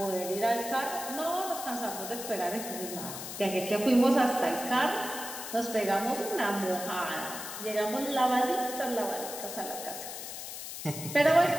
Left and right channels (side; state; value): left; noise; hiss, 8 dB below the sound